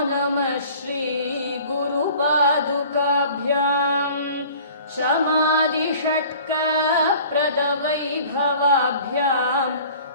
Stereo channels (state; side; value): inverted; both; correlation -0.47